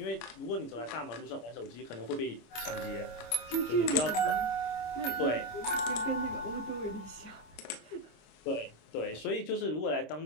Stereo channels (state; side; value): late; right; 26 ms